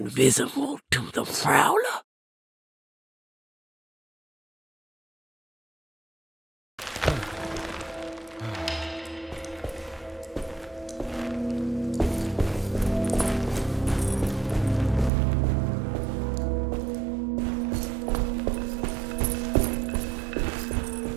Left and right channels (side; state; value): left; drops out; at 15.1 s